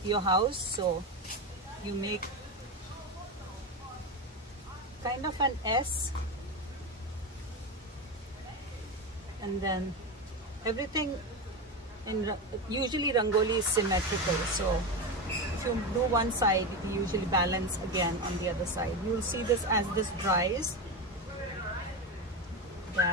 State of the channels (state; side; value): normal; both; correlation 0.17